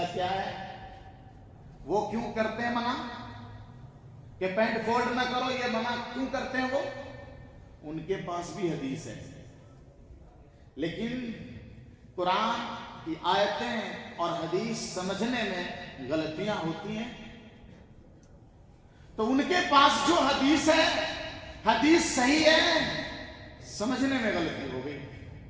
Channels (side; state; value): both; identical; correlation 1.00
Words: کیا ہے؟ وہ کیوں کرتے ہیں منع کہ پینٹ فولڈ نہ کرو؟ یہ منع کیوں کرتے ہیں وہ؟ ان کے پاس بھی حدیث ہے، لیکن قرآن کی آیتیں اور حدیث سمجھنے میں غلطیاں ہوتی ہیں۔ تو ان کے پاس جو حدیث ہے، حدیث صحیح ہے، سمجھنے میں غلطی ہو گئی۔